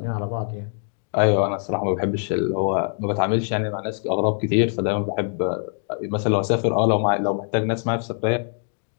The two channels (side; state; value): right; silent; 57 dB below the other